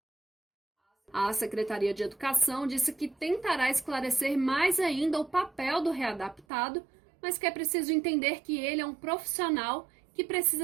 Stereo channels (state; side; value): drops out; left; at 6.5 s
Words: A Secretaria de Educação disse que tentará esclarecer mais ainda o papel do readaptado, mas que é preciso entender que ele é um profissional que